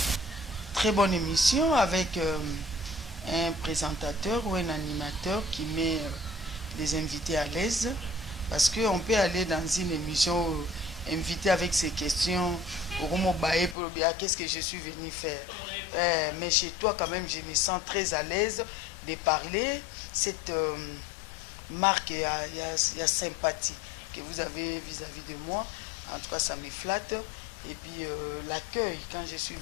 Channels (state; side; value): drops out; right; at 13.8 s